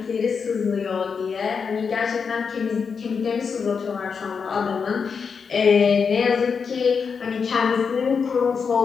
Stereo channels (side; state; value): right; quieter; 5.8 dB